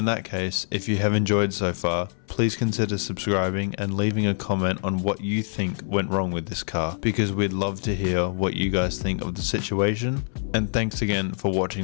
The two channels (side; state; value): right; silent; 60 dB below the other